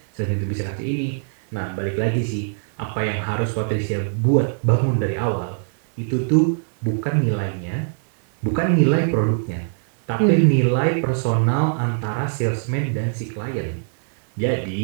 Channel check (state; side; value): silent; left; 64 dB below the other